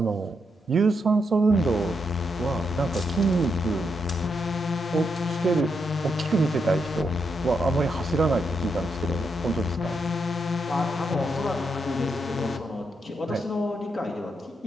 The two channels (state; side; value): normal; both; correlation 0.81